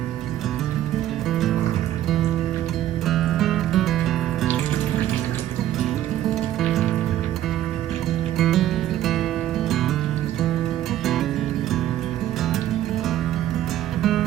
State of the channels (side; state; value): left; quieter; 12.7 dB